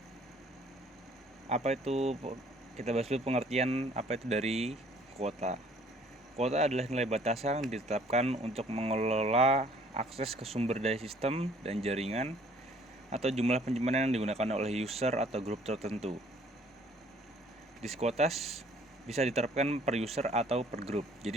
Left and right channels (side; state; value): both; normal; correlation 0.58